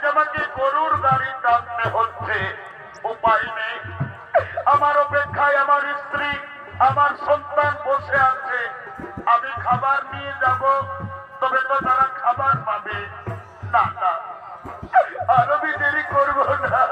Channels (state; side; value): identical; both; correlation 1.00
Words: আমাকে গরুর গাড়ি টানতে হচ্ছে। উপায় নেই, আমার অপেক্ষায় আমার স্ত্রী, আমার সন্তান বসে আছে। আমি খাবার নিয়ে যাব, তবে তো তারা খাবার পাবে না। না, আর আমি দেরি করবো না,